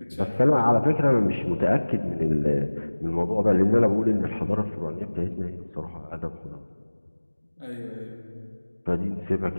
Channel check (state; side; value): inverted; both; correlation -1.00